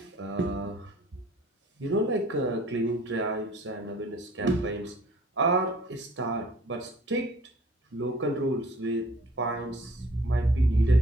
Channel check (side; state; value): both; normal; correlation 0.52